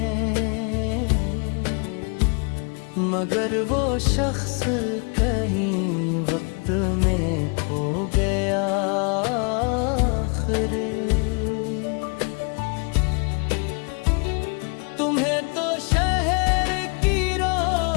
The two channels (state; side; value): quieter; right; 36.2 dB